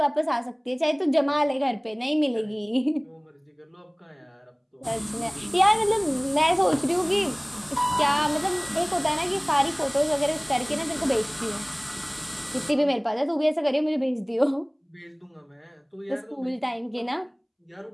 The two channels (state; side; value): identical; both; correlation 1.00